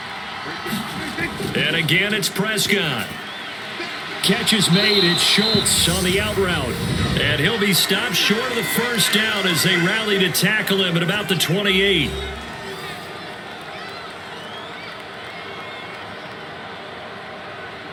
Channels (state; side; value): identical; both; correlation 1.00